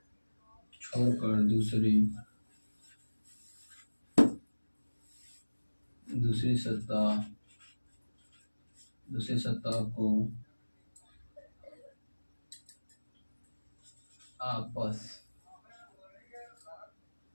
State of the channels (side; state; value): both; inverted; correlation -1.00